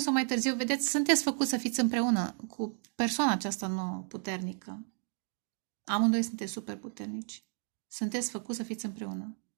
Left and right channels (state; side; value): silent; left; 56 dB below the other